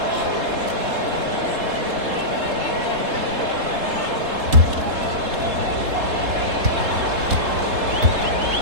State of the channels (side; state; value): left; late; 3.7 ms